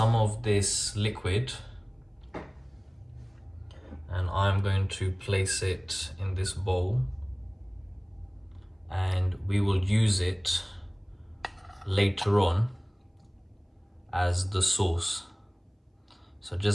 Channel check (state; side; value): identical; both; correlation 1.00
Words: of this liquid, and I'm going to place it in this bowl, and we will use it later on as the sauce. So